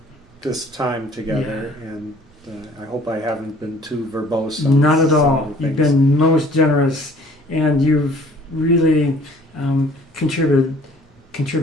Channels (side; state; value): both; normal; correlation 0.54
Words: this time together, and I hope I haven't been too verbose. Not at all. You've been most generous, and you've really contributed